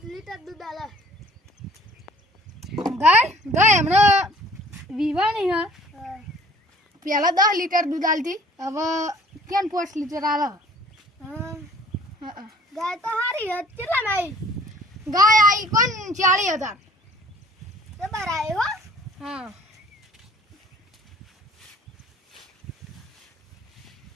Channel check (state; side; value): normal; both; correlation 0.53